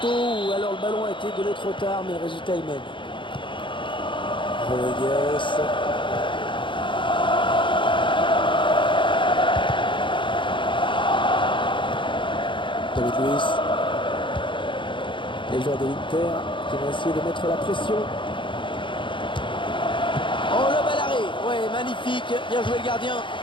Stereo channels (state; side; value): late; right; 0.24 ms